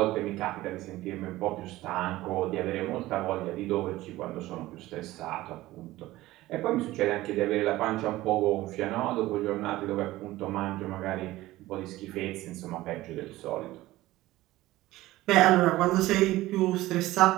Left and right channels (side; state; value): left; quieter; 17.1 dB